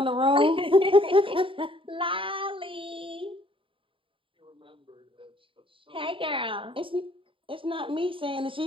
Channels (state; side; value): late; left; 0.25 ms